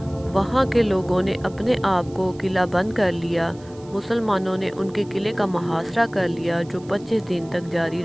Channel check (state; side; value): noise; right; hiss, 26 dB below the sound